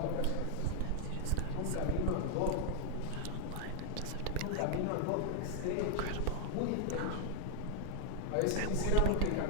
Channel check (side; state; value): both; different; correlation 0.00